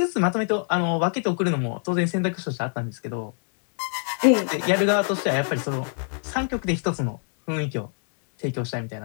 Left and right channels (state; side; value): silent; right; 59 dB below the other